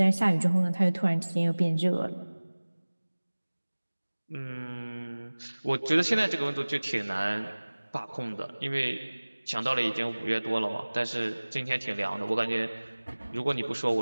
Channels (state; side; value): inverted; both; correlation -1.00